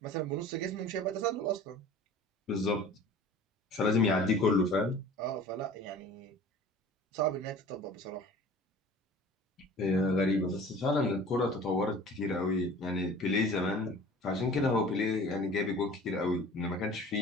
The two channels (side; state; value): both; normal; correlation 0.44